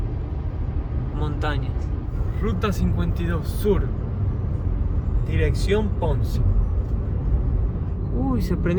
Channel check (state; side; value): identical; both; correlation 1.00